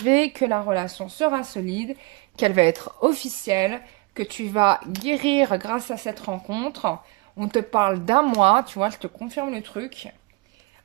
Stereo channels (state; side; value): quieter; left; 26.0 dB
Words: que la relation sera solide, qu'elle va être officielle, que tu vas guérir grâce à cette rencontre. On te parle d'un mois, tu vois, je te confirme le truc.